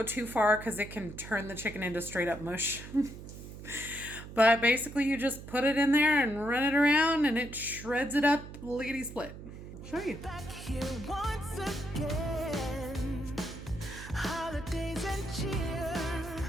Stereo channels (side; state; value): right; noise; hum, 13 dB below the sound